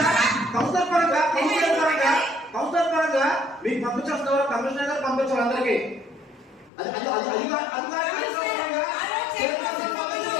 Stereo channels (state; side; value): drops out; right; at 6.7 s